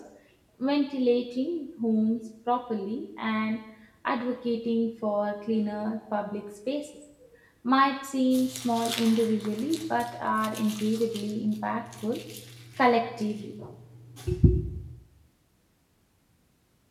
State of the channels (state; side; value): identical; both; correlation 1.00